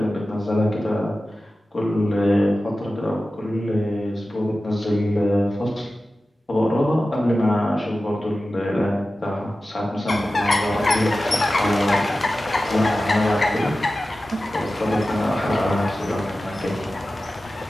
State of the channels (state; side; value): normal; both; correlation 0.95